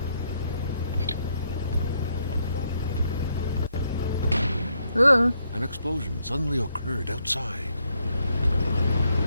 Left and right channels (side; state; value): both; inverted; correlation -0.76